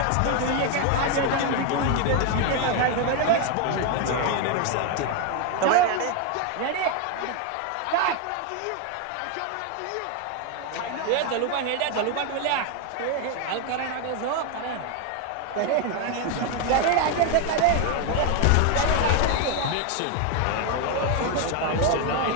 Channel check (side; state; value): both; different; correlation 0.01